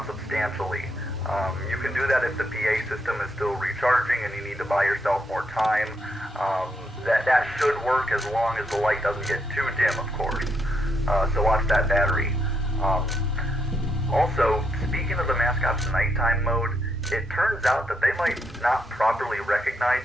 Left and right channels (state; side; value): normal; both; correlation 0.78